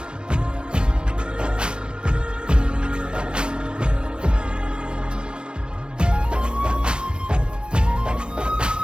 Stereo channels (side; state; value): left; late; 0.054 ms